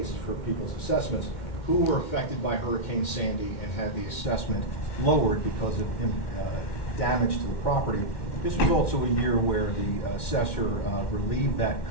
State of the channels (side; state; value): right; late; 2.1 ms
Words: for people's assessments who were affected by Hurricane Sandy and had the assessment lowered because of damage to the property. This was also a year where the assessor relieved that